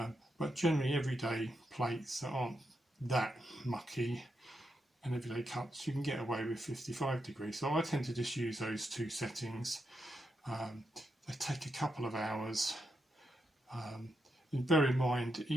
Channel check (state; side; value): normal; both; correlation 0.84